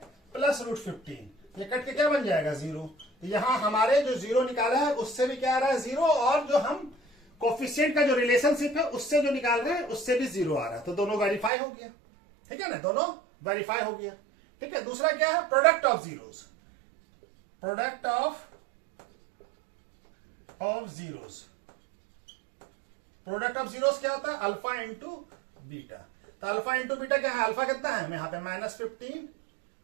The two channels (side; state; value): left; drops out; at 11.5 s